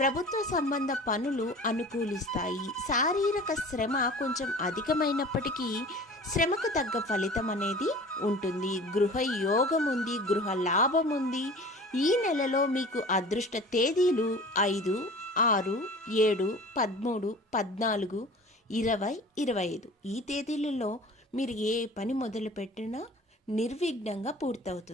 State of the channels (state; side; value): normal; both; correlation 0.42